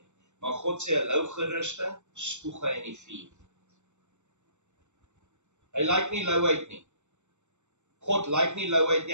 Maar God sê 'n lou gerusting, spoeg hy in die vuur. Hy lyk nie louheid nie. God lyk nie louheid nie,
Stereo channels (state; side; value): late; left; 0.84 ms